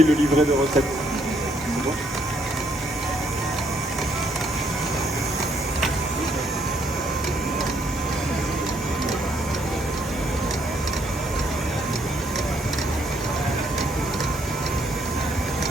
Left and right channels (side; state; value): both; normal; correlation 0.70